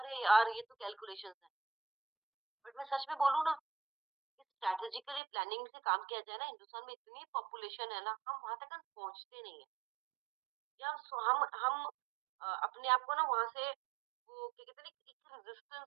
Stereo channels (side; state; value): left; drops out; at 5.2 s